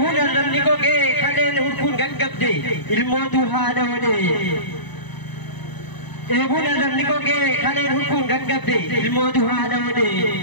arrabni gogee kaleen hurkuun gaggabde ilmootu haadha wadee. Eebuun arrabni gogee kaleen hurkuun gaggabde ilmootu haadha wadee.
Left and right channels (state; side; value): late; right; 1.0 ms